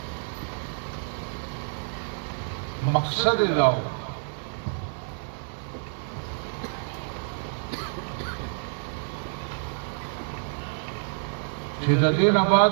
مقصد دا و چې د دې نه بعد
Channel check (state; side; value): silent; left; digital silence